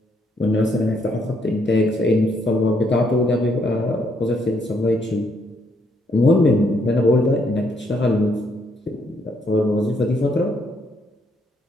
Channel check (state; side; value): normal; both; correlation 0.72